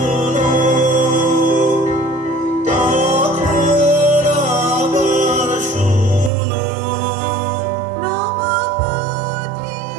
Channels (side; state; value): left; drops out; at 6.3 s